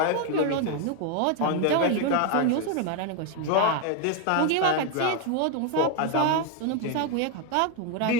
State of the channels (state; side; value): different; both; correlation 0.01